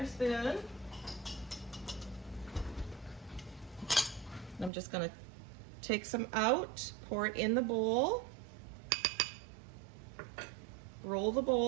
spoon. I'm just gonna take some out, pour it in the bowl, roll the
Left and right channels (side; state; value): left; drops out; at 4.7 s